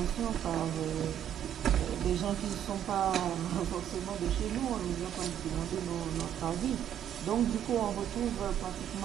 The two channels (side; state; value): left; quieter; 10.1 dB